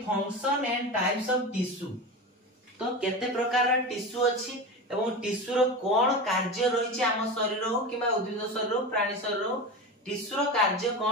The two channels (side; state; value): both; normal; correlation 0.25